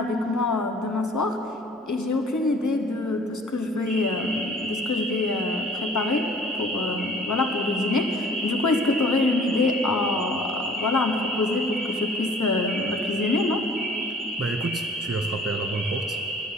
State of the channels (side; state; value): both; normal; correlation 0.51